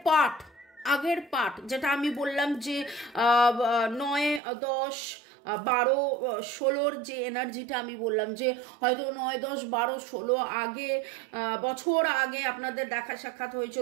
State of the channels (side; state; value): left; drops out; at 4.4 s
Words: পার্ট, যেটা আমি বললাম যে 9 10 12 16-র যে এনার্জিটা আমি বললাম, যে হয়তো 9 10 12 16 আগে বছর আগে আপনাদের দেখা সাক্ষাৎ